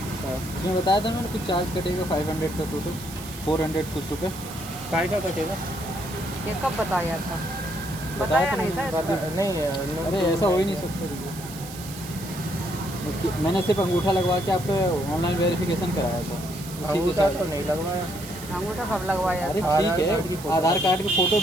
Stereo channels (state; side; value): noise; right; hiss, 14 dB below the sound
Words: उसमें बताया था मैंने कुछ चार्ज कटेगा 500 का, टोटल 400 कुछ रुपये। काय का कटेगा? ये कब बताया था? बताया नहीं था इसको। नहीं, अरे ऐसा हो ही नहीं सकता। मैंने सिर्फ अंगूठा लगवा के आपका ऑनलाइन वेरिफिकेशन कराया था। अंगूठा तो नहीं लगवाया। अंगूठा कब लगवाया? अरे ठीक है, आधार कार्ड की फ़ोटो